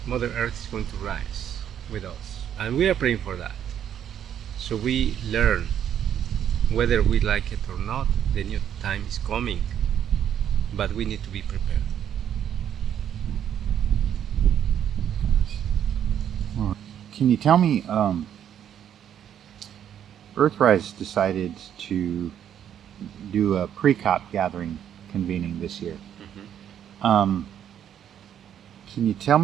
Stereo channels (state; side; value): quieter; left; 9.6 dB